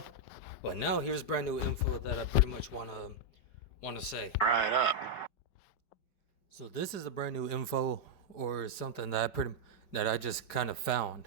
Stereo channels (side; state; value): right; late; 5.2 ms